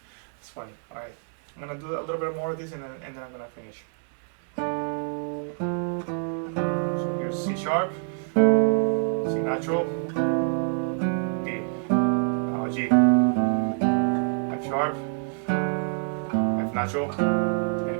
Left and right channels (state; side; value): silent; left; 55 dB below the other